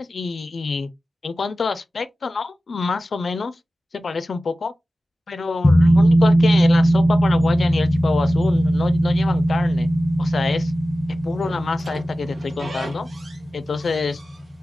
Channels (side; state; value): both; normal; correlation 0.95